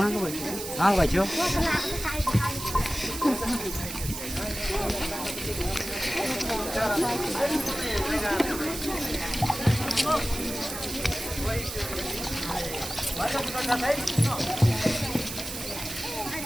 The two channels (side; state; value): right; noise; hiss, 7 dB below the sound